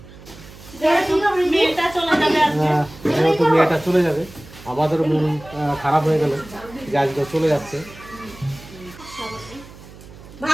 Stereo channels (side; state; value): right; noise; hum, 19 dB below the sound